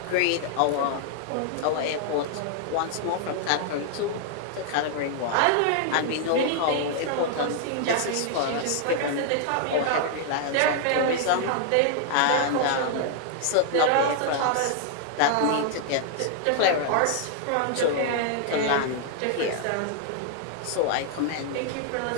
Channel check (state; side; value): different; both; correlation 0.00